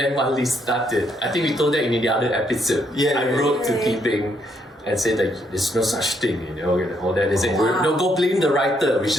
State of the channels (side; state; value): both; normal; correlation 0.73